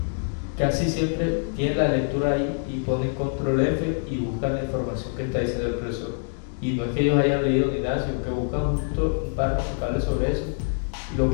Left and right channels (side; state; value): right; silent; digital silence